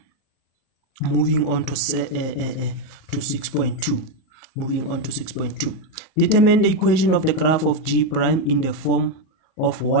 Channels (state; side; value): late; right; 38 ms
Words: Moving on to 6.2. Moving on to 6.2. Determine the equation of the graph of G prime in the form of